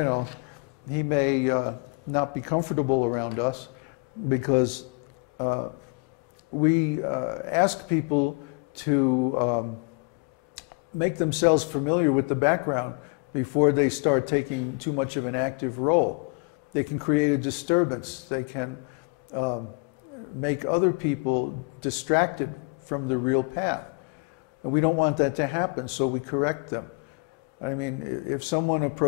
know, he may not be comfortable around us because we ask people to make themselves familiar with the background before they start taking too much of an active role. They can create a disturbance. They can make other people distracted from the real path. And we don't want that to happen, so we correct them. I mean, if someone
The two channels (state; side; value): quieter; right; 34.0 dB